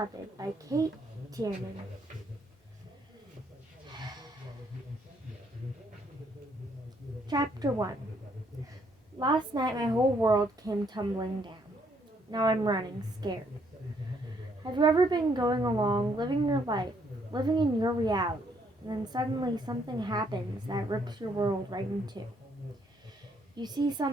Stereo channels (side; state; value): both; normal; correlation 0.70